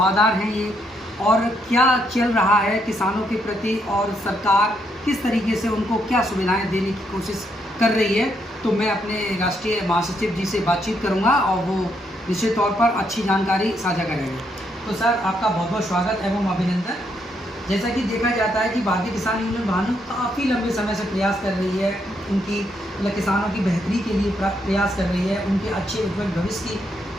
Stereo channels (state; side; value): normal; both; correlation 0.76